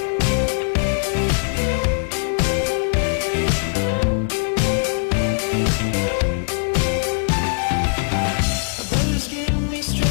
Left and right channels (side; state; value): right; silent; digital silence